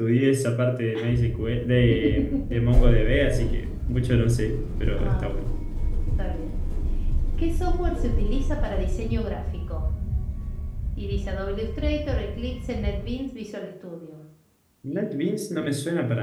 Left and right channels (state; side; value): identical; both; correlation 1.00